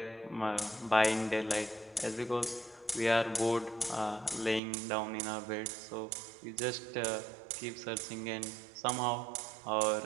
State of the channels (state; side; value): drops out; left; at 4.6 s